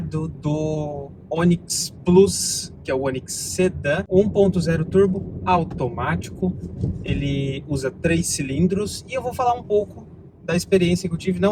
do Onix Plus, que é o Onix Sedan 1.0 turbo automático. Ele usa 3 cilindros e eu vou falar um pouco da experiência que eu tive.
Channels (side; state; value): both; identical; correlation 1.00